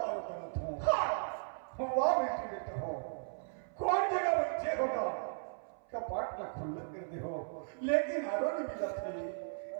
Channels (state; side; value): silent; left; 54 dB below the other